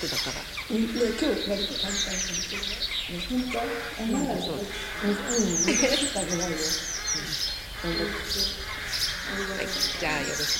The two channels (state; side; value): identical; both; correlation 1.00